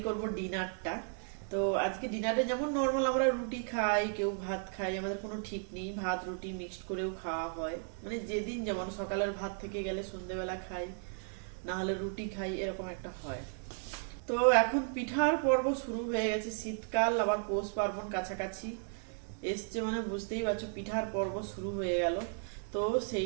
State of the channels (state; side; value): silent; left; 55 dB below the other